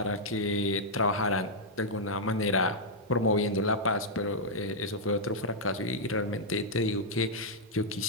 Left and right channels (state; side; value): normal; both; correlation -0.07